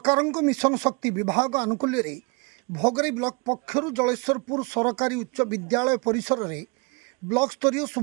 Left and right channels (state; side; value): quieter; left; 30.7 dB